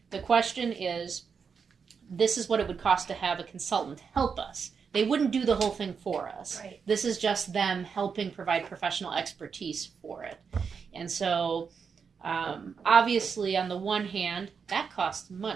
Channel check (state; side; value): quieter; left; 6.0 dB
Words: The question is, this is what it would cost to have a consultant help us. They wouldn't do the whole thing for us. Right. This is just them helping provide professional expertise for it. And so obviously on the one hand, that costs